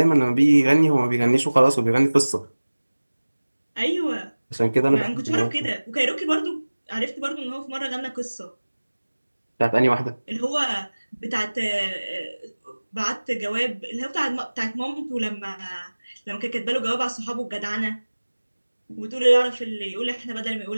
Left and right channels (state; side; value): inverted; both; correlation -1.00